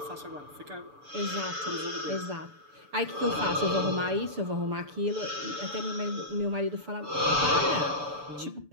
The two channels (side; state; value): left; late; 6.9 ms